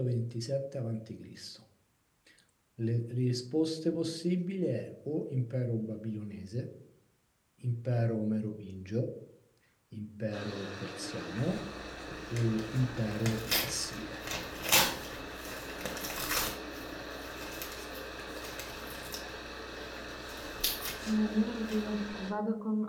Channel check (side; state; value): both; identical; correlation 1.00